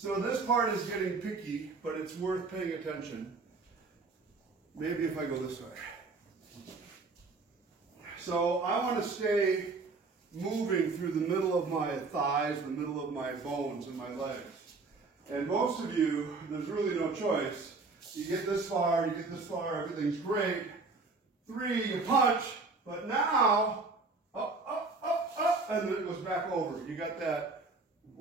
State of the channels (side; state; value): left; quieter; 4.0 dB